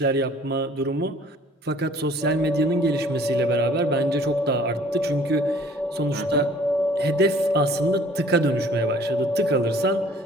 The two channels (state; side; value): normal; both; correlation 0.54